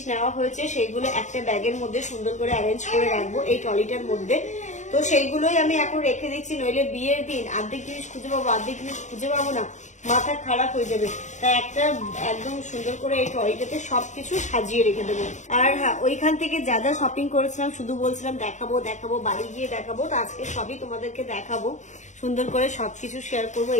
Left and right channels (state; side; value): late; right; 0.35 ms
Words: নেওয়া হয়েছে সেইগুলো একটা ব্যাগের মধ্যে সুন্দর করে অ্যারেঞ্জ করে রাখবো এই ট্রলিটার মধ্যে। তো সেইগুলোই আমি এখন রেখে দিচ্ছি, নইলে বিয়ের দিন অর্ধেক জিনিস খুঁজে পাবো, অর্ধেক জিনিস খুঁজে পাবো না, মাথা খারাপ হয়ে যাবে। তাই একটা একদম সুন্দর করে এই ট্রলিটাতে সবকিছু সাজিয়ে রেখে দেবো। আর হ্যাঁ, ওইখান থেকে যা যা শপিং করেছিলাম শুধু বলছিলাম দেখাবো, বাড়ি গিয়ে দেখাবো, তো আজকে সবই তোমাদেরকে দেখাবো, সুন্দর করে সবকিছু শেয়ার করবো।